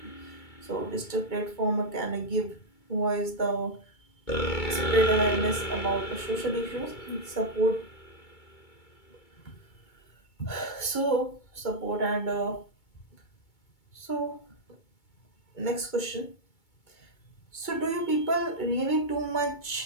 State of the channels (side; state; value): right; late; 2.2 ms